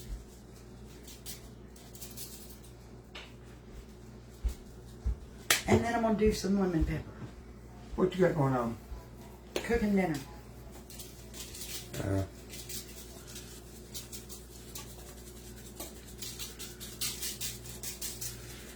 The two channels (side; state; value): both; identical; correlation 1.00